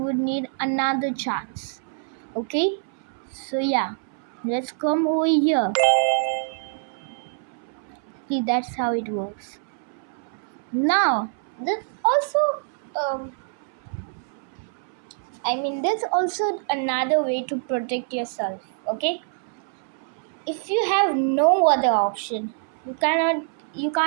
need another chance. Okay? So yeah, let's come over here. See, that's how it works. Now, there's also there's also another way to protect yourself. Okay? If you have no other option, you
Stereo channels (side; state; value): left; silent; 61 dB below the other